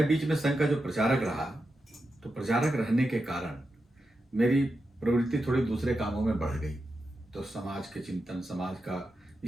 बीच में संघ का जो प्रचारक रहा, तो प्रचारक रहने के कारण मेरी प्रवृत्ति थोड़ी दूसरे कामों में बढ़ गई। तो समाज के चिंतन, समाज का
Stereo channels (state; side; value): normal; both; correlation 0.89